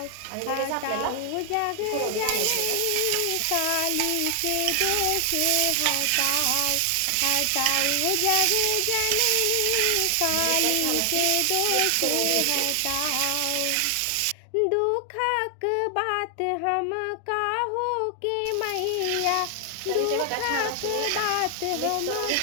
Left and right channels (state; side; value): different; both; correlation 0.00